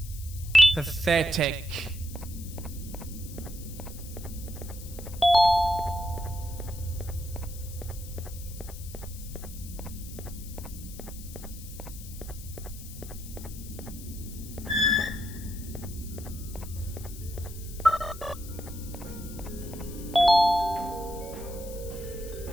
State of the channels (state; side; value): noise; left; hiss, 15 dB below the sound